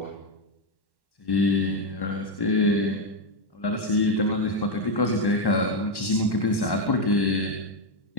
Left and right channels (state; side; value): late; right; 1.1 ms